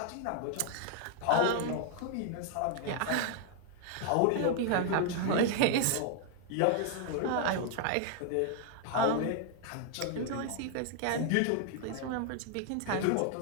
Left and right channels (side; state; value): both; different; correlation 0.00